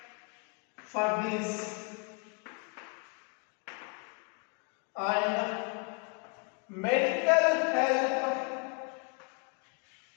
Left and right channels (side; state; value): right; quieter; 36.0 dB